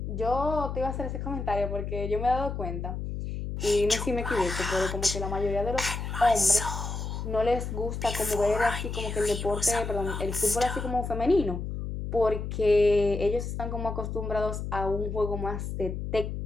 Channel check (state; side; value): noise; left; hum, 5 dB below the sound